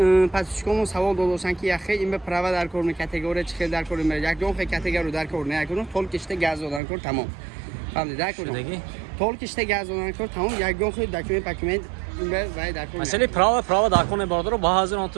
پاسچکومو سوال دادوسن که یخه این به پروا در کور می کاتگوری چخل در کور می یک دو خ کاتگوری در کور نه اکودون طول کشته گاز دادن کرد تمام فهمیدی اکودون طول کشته گاز دادن کرد تمام یک دو خ داکیومنت این به وای در کور مثلا پروا در کور برادر با هزار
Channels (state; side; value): drops out; left; at 6.8 s